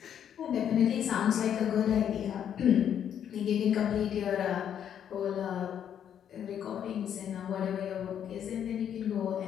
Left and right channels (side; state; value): right; quieter; 9.2 dB